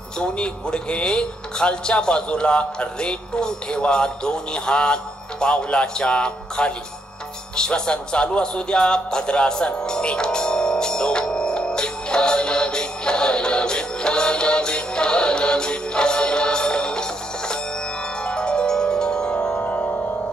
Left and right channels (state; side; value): normal; both; correlation 0.76